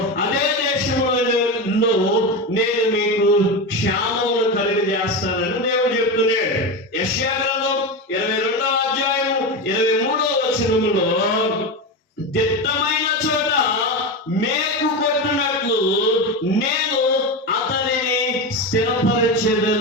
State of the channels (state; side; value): normal; both; correlation 0.19